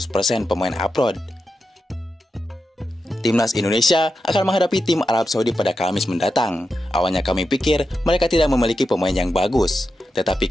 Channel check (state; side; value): normal; both; correlation 0.89